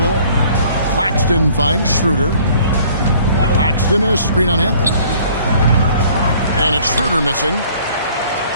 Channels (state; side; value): inverted; both; correlation -0.56